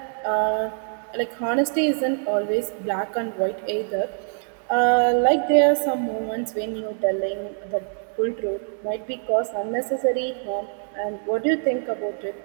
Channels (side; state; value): left; silent; 62 dB below the other